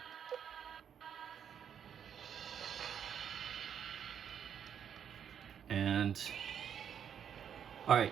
And all right.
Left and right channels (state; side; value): quieter; left; 8.5 dB